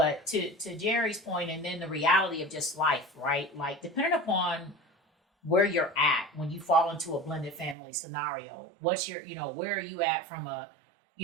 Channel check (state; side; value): drops out; left; at 7.8 s